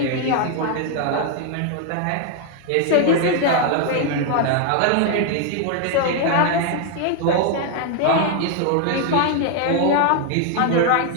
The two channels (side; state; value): both; different; correlation 0.00